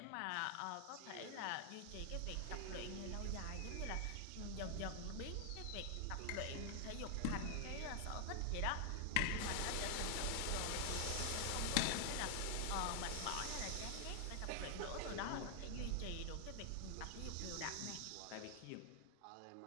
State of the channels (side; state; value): both; different; correlation 0.00